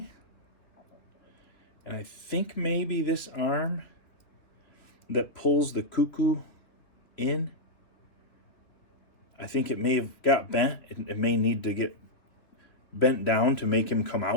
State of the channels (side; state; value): right; late; 3.1 ms